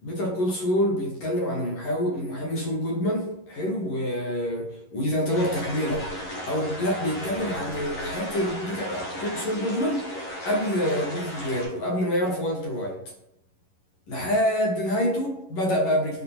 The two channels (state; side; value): late; right; 11 ms